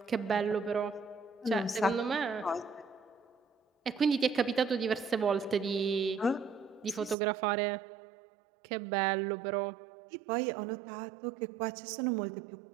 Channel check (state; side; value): drops out; left; at 7.2 s